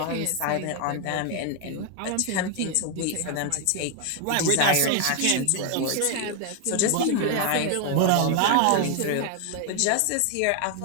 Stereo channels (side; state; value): both; different; correlation 0.01